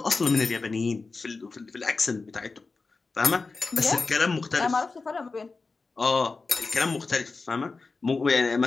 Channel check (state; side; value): quieter; right; 4.1 dB